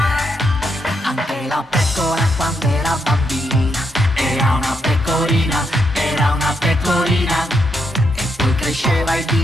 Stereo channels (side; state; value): both; normal; correlation 0.80